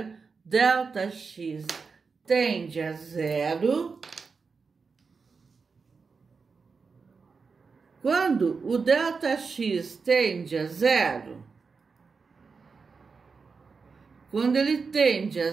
ΔX tende a zero. Quando o ΔX tende a zero, quando ele tende a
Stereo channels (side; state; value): left; quieter; 4.9 dB